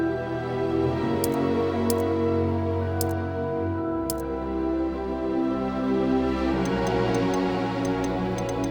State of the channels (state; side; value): identical; both; correlation 1.00